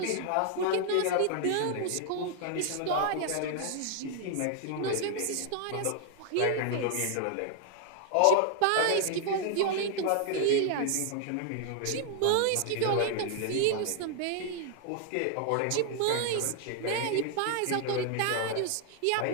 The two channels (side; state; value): both; different; correlation 0.00